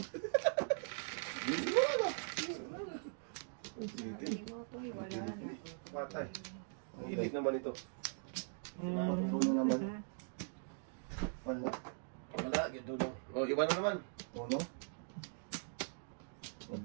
Hindi mo to, wala na. Patay. Ang ilig naman ito. Uno naman. Wala. Wala. Gito lang. O, iba na naman. Uno.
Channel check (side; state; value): left; silent; digital silence